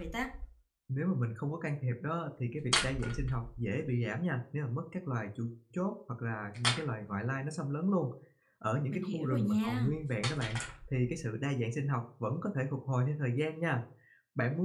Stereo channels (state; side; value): identical; both; correlation 1.00